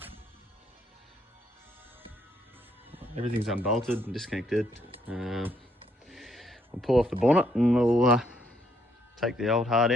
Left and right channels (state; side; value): normal; both; correlation 0.71